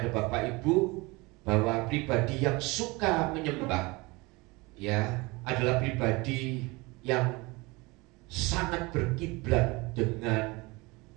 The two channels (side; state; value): left; quieter; 24.4 dB